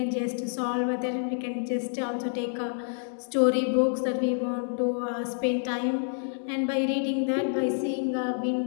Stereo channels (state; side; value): silent; right; digital silence